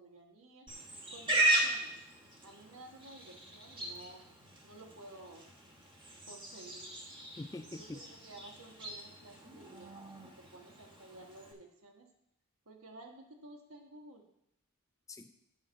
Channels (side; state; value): both; normal; correlation 0.18